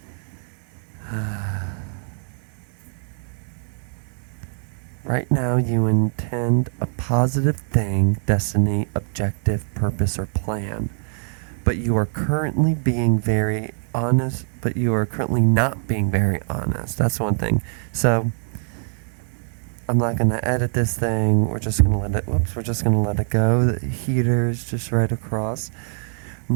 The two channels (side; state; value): left; silent; digital silence